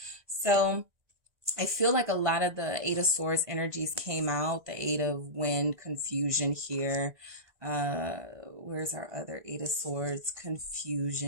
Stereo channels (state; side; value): late; left; 1.9 ms